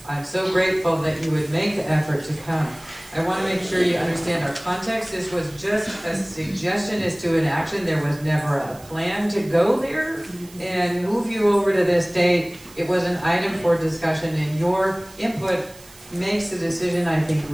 I'm so grateful that you would make the effort to come. I want to make sure you understand our context. This was just a suggestion as to an action. There was never a plan to go there and move you over to this date. It was an item for discussion, and your input makes the decision, I think,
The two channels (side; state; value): right; noise; hiss, 22 dB below the sound